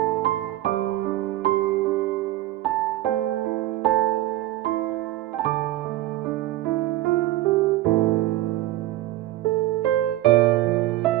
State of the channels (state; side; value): quieter; left; 15.5 dB